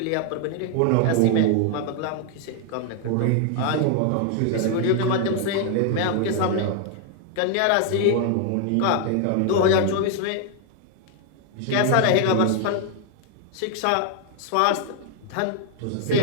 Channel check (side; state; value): both; different; correlation 0.00